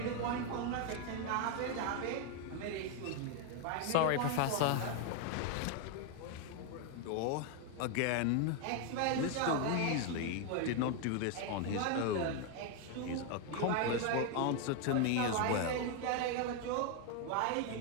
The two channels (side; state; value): both; different; correlation 0.01